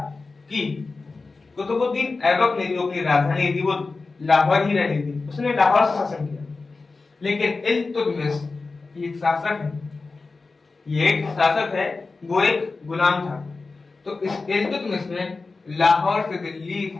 कि कुतुबुद्दीन ऐबक ने जो अपनी राजधानी थी वो लाहौर ही रहनी थी, उसने लाहौर से शासन किया। लेकिन इल्तुतमिश एक शासक है, ये एक शासक है, वो एक गुलाम था। तो इस इल्तुतमिश ने लाहौर से दिल्ली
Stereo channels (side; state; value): right; quieter; 3.9 dB